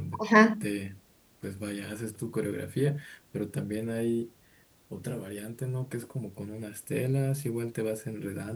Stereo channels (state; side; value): identical; both; correlation 1.00